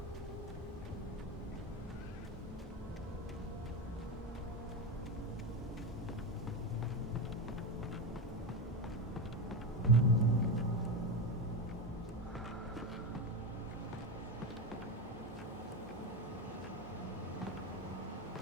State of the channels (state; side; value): normal; both; correlation 0.16